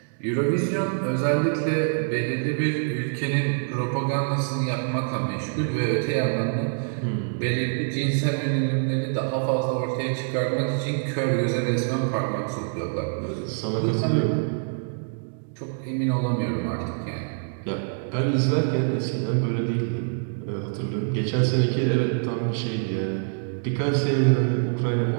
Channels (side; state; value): left; silent; digital silence